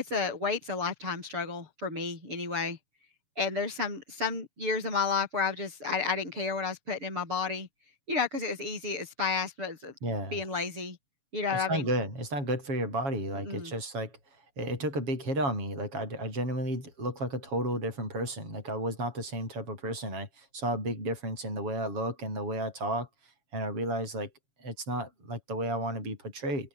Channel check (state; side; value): late; left; 7.1 ms